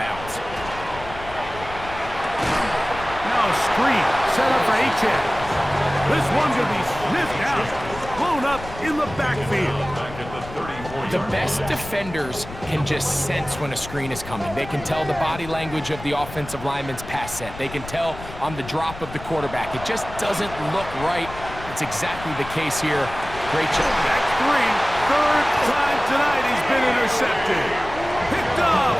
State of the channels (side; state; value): left; noise; rumble, 13 dB below the sound